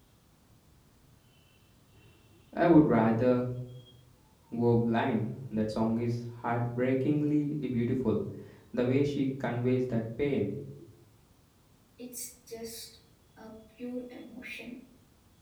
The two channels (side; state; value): both; identical; correlation 1.00